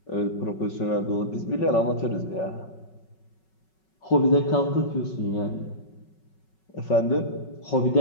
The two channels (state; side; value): late; right; 5.4 ms